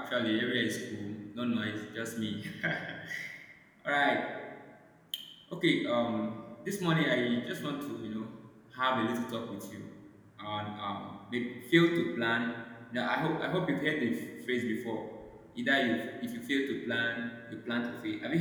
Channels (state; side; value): identical; both; correlation 1.00